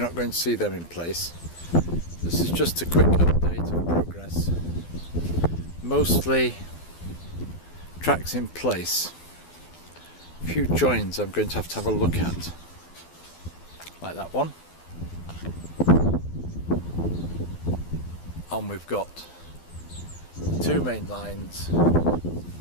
not going to see them in place. This is just a quick update of progress. Mostly tracks in place. A few joins I'm going to have a look at, like that one. And we've got two main lines,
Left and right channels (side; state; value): right; late; 12 ms